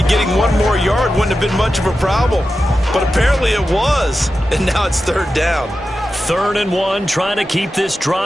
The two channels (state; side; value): normal; both; correlation 0.92